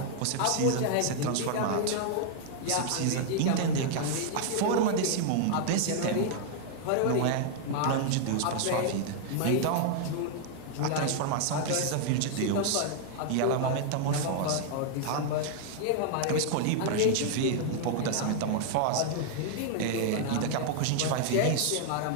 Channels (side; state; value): both; different; correlation 0.00